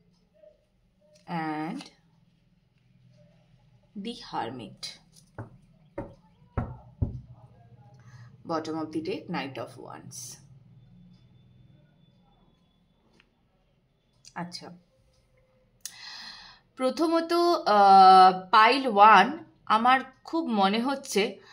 And the Hermit. Bottom of the deck, Knight of Wands. আচ্ছা, প্রথমত পাইল 1, আমার খুব মনে হচ্ছে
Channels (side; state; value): both; identical; correlation 1.00